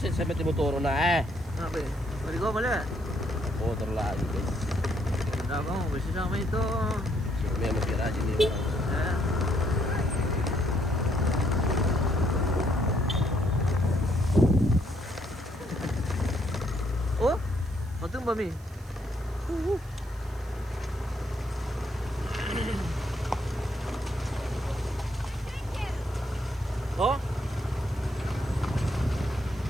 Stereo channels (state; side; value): noise; right; hiss, 25 dB below the sound